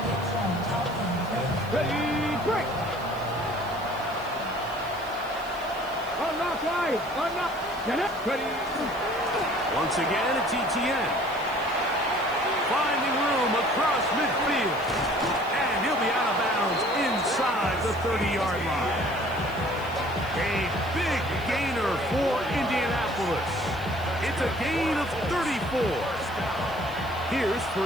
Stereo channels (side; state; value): right; noise; hiss, 22 dB below the sound